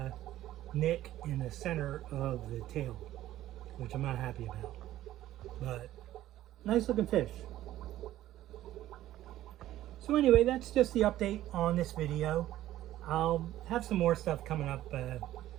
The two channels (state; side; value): quieter; left; 13.9 dB